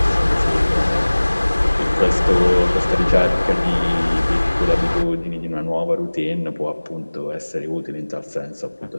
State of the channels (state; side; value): inverted; both; correlation -1.00